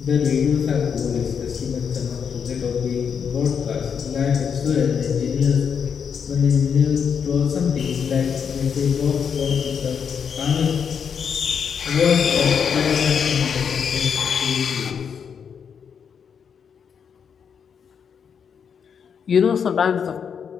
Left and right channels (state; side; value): quieter; right; 7.0 dB